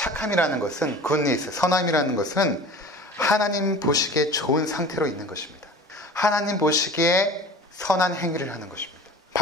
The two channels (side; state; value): both; normal; correlation 0.40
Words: 것은 굿니스, 선함이라는 것은 하나님 보시기에 좋은 상태로 있는 것입니다. 하나님 보시기에 선한 행위를 하는 것입니다.